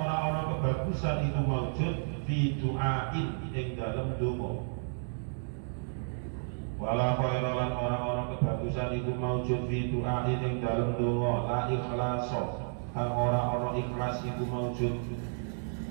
ora kebagusan itu maujud fi du'ain ing dalem donga. Wala khaira lan ora kebagusan iku maujud fi du'ai ing dalem donga la ikhlaso kang ora ikhlas iku maujud.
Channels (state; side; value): silent; left; digital silence